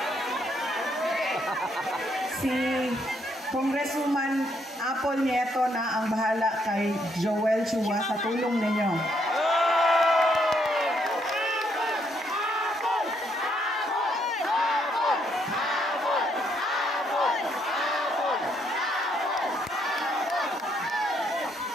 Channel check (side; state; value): both; normal; correlation 0.72